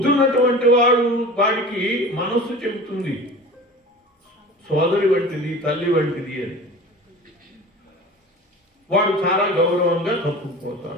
ఉన్నటువంటి వాడికి మనస్సు చెబుతుంది సోదరి వంటిది, తల్లి వంటిది అని. వాడు చాలా గౌరవంగా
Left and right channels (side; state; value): both; normal; correlation 0.38